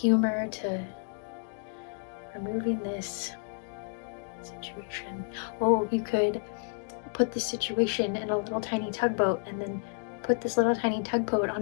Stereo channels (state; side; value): silent; right; 58 dB below the other